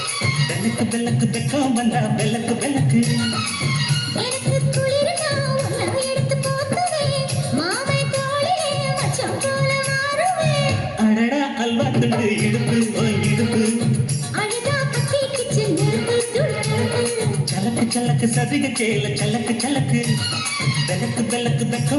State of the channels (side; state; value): both; identical; correlation 1.00